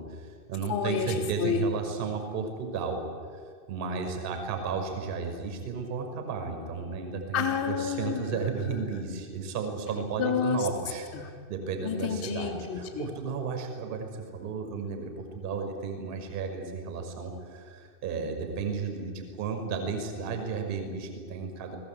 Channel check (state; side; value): late; left; 2.6 ms